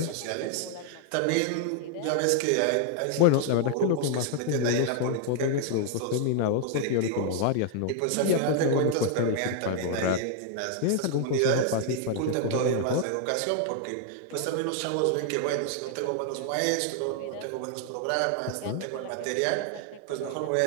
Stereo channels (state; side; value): different; both; correlation 0.00